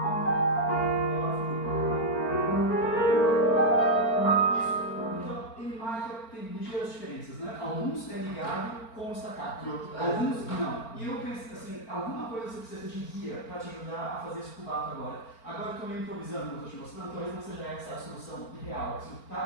Alguns é ligado com o staccato, alguns não. E eu penso assim, alguma coisa você precisa de guia para te ajudar a fazer esse cubato agora. Agora eu estou meio improvisando, como estou te mostrando, talvez não seja essa a solução real,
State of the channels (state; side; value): late; right; 4.4 ms